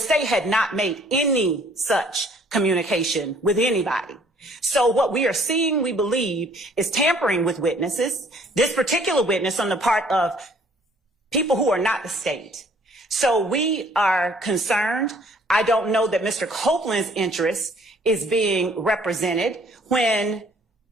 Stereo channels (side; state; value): both; normal; correlation 0.59